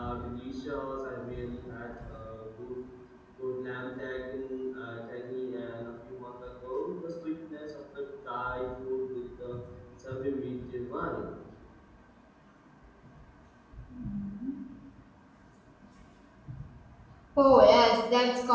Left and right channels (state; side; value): identical; both; correlation 1.00